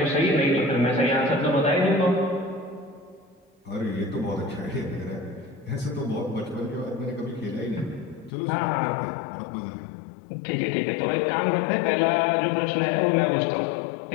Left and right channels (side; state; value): right; drops out; at 8.3 s